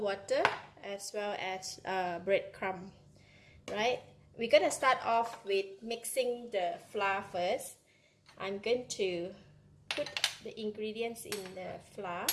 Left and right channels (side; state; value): both; identical; correlation 1.00